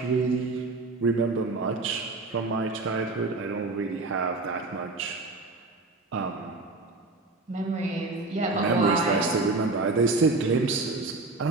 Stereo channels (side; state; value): left; quieter; 3.4 dB